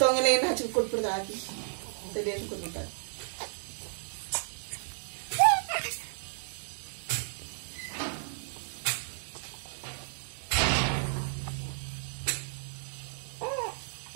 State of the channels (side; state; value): left; silent; 56 dB below the other